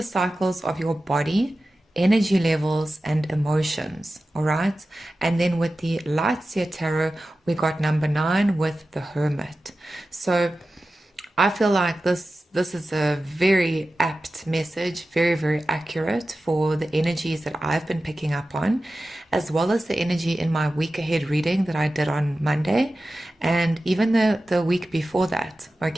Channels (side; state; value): both; normal; correlation 0.94